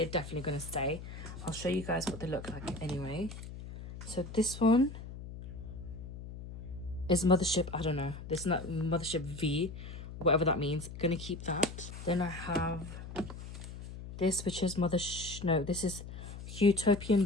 definitely going to stay. I'll show you guys what they look like anyway. So this one is Mothership, I don't know. This is not Mothership V, whatever that means. Gonna keep that. Then I have this, which is this is Utopian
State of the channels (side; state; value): left; noise; hum, 11 dB below the sound